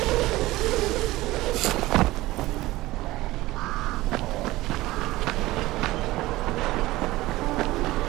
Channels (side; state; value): left; quieter; 18.2 dB